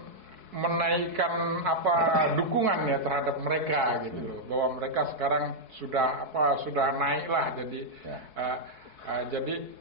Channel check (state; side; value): late; left; 4.7 ms